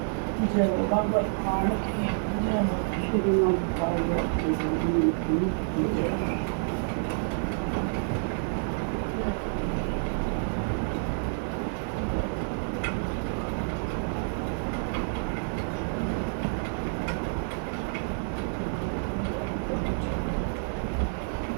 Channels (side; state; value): left; silent; digital silence